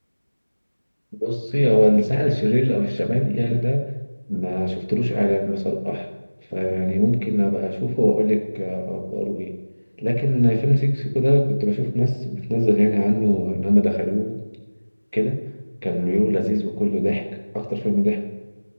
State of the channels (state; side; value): inverted; both; correlation -1.00